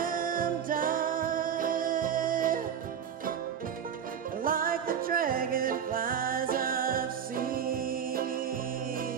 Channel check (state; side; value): quieter; left; 8.2 dB